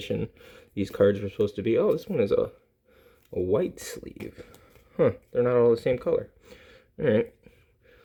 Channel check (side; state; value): both; identical; correlation 1.00